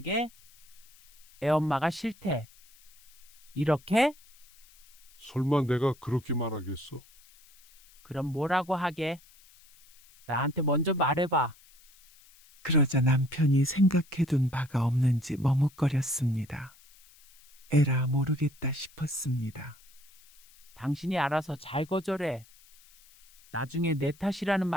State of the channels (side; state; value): left; noise; hiss, 26 dB below the sound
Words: 애엄마가 싫대. 이렇게? 설마 내가 그렇게 말하겠어? 그럼 뭐라고 하게? 나한테 먼저 말해봐. 그러자 남편이 생각해둔 바가 없는지 머뭇거렸습니다. 에라 모르겠다 싶었습니다. 당신이 알아서 잘 거절해. 나중에 내 탓이라는